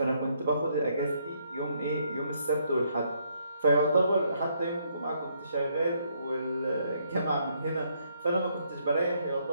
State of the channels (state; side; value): inverted; both; correlation -0.72